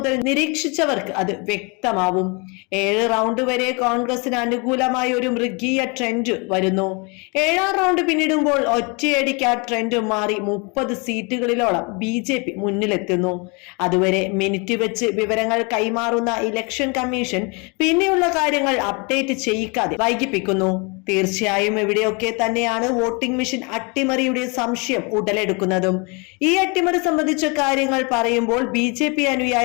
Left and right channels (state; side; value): quieter; right; 31.2 dB